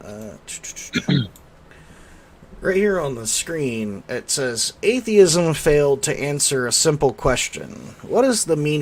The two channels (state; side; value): identical; both; correlation 1.00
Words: Right here on the screen, it says, "Atheism failed to answer a simple question. What is the